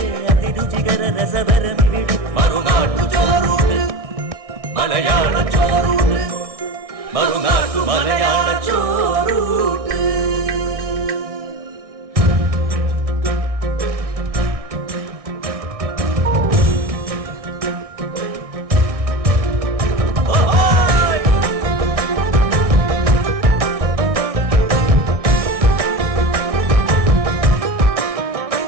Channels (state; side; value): late; left; 1.6 ms